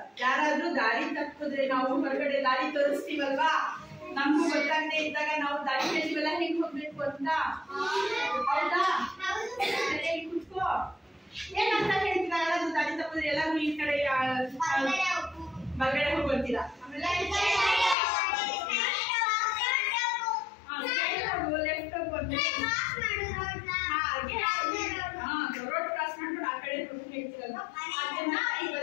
ಯಾರಾದ್ರೂ ದಾರಿ ತಪ್ಪಿದ್ರೆ ನಾವು ಹೊರಗಡೆ ದಾರಿ ತೋರಿಸ್ತೀವಲ್ವಾ, ನಮಗೂ ಗೊತ್ತಾಗದೆ ಇದ್ದಾಗ ನಾವು ದಾರಿ ಕೇಳಿವಲ್ಲ ಹೆಂಗ್ ಹೋಗ್ಬೇಕು ಅಂತ. ಹೌದಾ? ಕುತ್ಕೋ. ಏನಂತ ಹೇಳ್ತೀರಾ? ಯಾರಾದ್ರೂ ದಾರಿ ತಪ್ಪಿದ್ರೆ ಎಲ್ಲಾದ್ರೂ ಈ ಕಡೆ ಹೊರಗಡೆ ಹೋಗ್ತೀರಾ? ಆಮೇಲೆ ಲೆಫ್ಟ್ ರೋಡ್ ಕ್ರಾಸ್ ಮಾಡ್ಕೊಂಡು ಆ ಕಡೆ ಹೇಳ್ತೀರಲ್ಲ, ಅದನ್ನ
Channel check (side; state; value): right; drops out; at 17.9 s